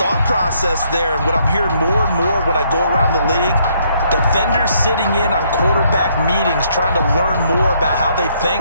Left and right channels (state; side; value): inverted; both; correlation -0.70